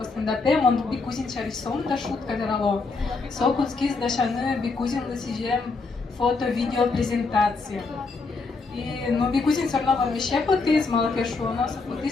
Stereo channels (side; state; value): right; quieter; 4.0 dB